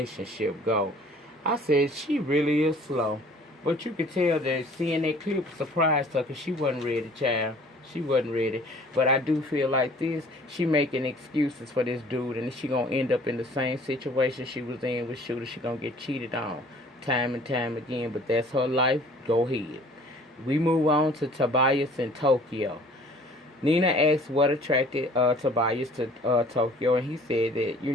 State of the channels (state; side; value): normal; both; correlation 0.52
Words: go. I said, she really is slow. But you could tell that seeing that clip surprised her because she wasn't ready, child. She wasn't ready. But I do feel like this, she making excuses for this dude, and she going to end up in the same situation she was in with Shooter. She going to get cheated on time and time again. But that's her life. Go ahead. We move on to Tobias in Tokyo. Nina asked what attracted Tobias to Tokyo, and he said